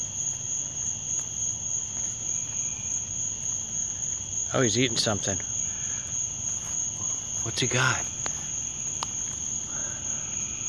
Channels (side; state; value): both; identical; correlation 1.00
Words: Oh, he's eating something. What's he got?